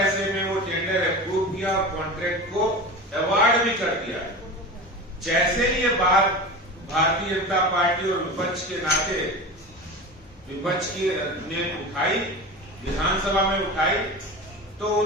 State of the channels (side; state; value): both; normal; correlation 0.30